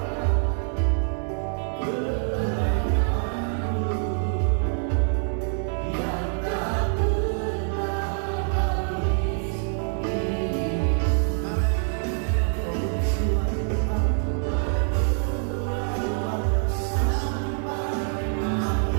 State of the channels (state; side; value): silent; left; 61 dB below the other